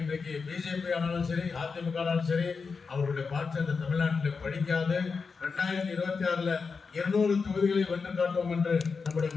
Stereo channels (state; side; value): quieter; right; 5.0 dB